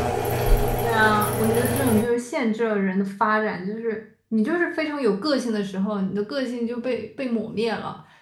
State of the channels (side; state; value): both; identical; correlation 1.00